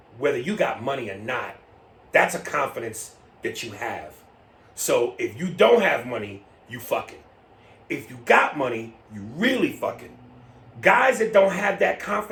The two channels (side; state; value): both; identical; correlation 1.00